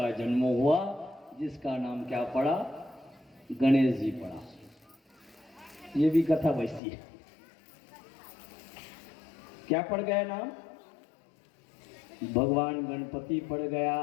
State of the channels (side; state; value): right; drops out; at 6.8 s